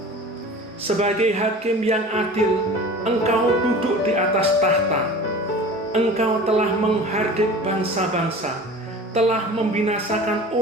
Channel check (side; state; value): both; normal; correlation 0.39